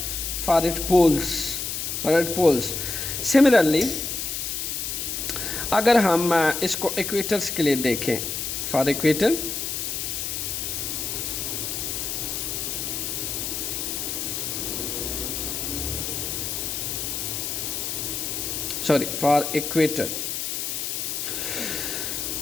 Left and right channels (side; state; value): left; noise; hiss, 3 dB below the sound